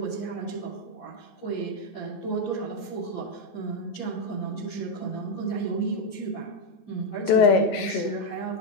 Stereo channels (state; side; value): late; right; 14 ms